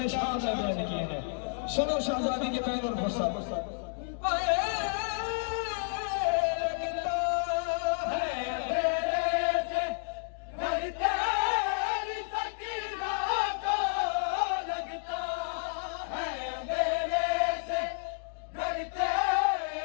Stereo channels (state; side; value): silent; right; digital silence